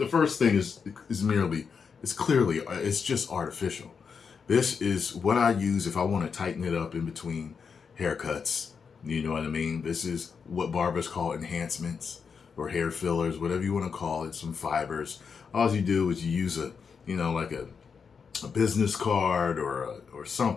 first thing is clearly just artificial. This is what I use if I want to tighten it up in between haircuts. You know what I mean? This is what barbers call enhancements or hair fillers, whatever you want to call it, some fibers. All you do is you use like a business card or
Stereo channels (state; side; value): quieter; right; 6.0 dB